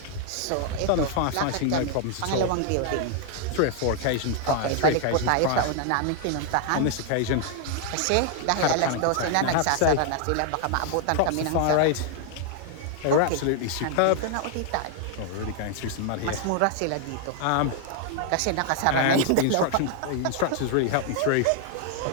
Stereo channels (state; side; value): different; both; correlation 0.00